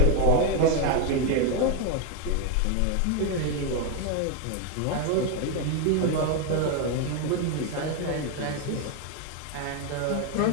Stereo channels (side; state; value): both; different; correlation 0.01